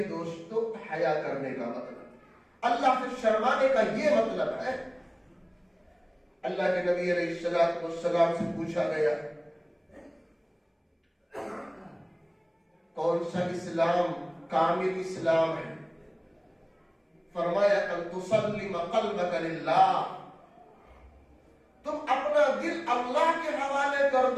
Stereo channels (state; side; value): identical; both; correlation 1.00